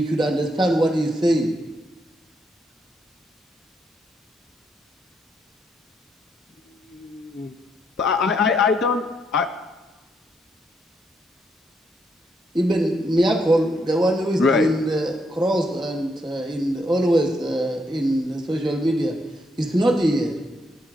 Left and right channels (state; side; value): normal; both; correlation 0.77